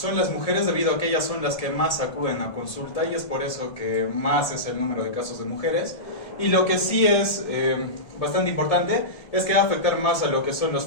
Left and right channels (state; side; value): late; right; 1.6 ms